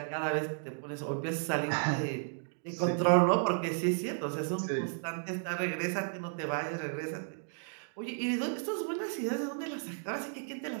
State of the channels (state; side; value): silent; left; digital silence